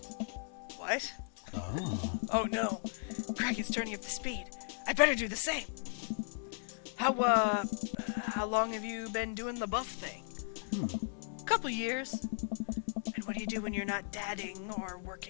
What? Oh. Oh no, Craig is turning up the speed. I better do the same. How long have you been doing the buff thing? Couple years. And what do you do when you're not dadding or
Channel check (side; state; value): right; silent; 54 dB below the other